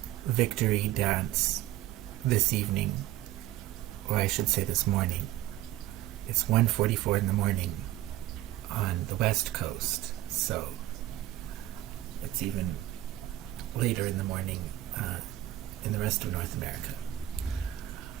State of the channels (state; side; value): quieter; left; 14.4 dB